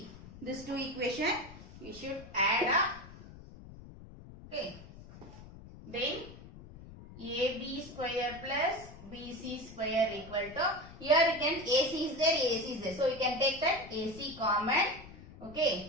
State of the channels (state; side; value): noise; left; rumble, 17 dB below the sound